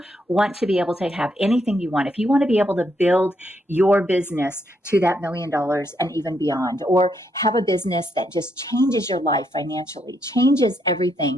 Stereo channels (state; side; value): normal; both; correlation 0.77